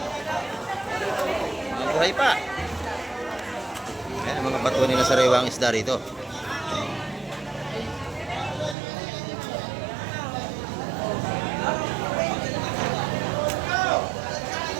Buhay pa. Ayan, mga batuan nila sariwa ang isda rito.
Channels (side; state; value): left; drops out; at 8.8 s